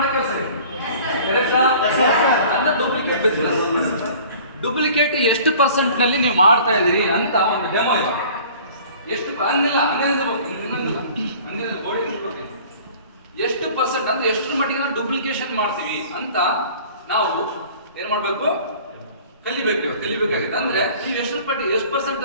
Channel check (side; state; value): both; inverted; correlation -0.48